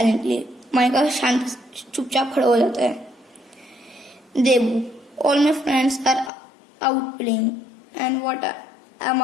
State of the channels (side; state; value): right; drops out; at 6.3 s